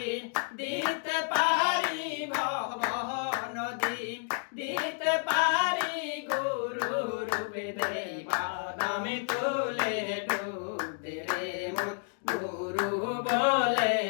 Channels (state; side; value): silent; right; 57 dB below the other